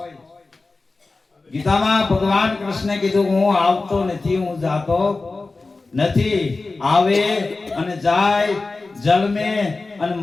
ગીતામાં ભગવાન કૃષ્ણે કીધું હું આવતો નથી હું જાતો નથી આવે અને જાય જન્મે અને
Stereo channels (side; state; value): right; quieter; 3.6 dB